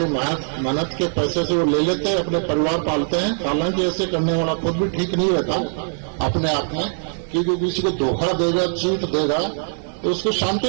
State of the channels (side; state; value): left; silent; digital silence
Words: मेहनत के पैसे से वो ले लेते हैं, अपने परिवार पालते हैं। हालांकि ऐसे करने वाला खुद भी ठीक नहीं रहता अपने आप में, क्योंकि किसी को धोखा देगा, चीट देगा, तो उसको